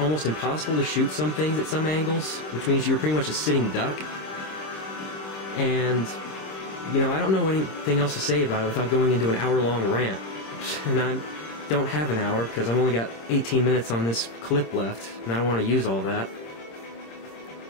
impossible to shoot some things at some angles, which means you were pretty much a sitting duck. And, you know, I don't know anything else to say about it without going into an hour-long rant. And I don't have an hour because I've only got 18 minutes on this clip left, and I don't want to use all that.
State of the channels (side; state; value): right; late; 26 ms